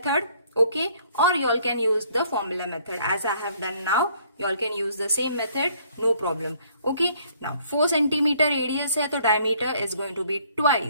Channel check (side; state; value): both; inverted; correlation -0.62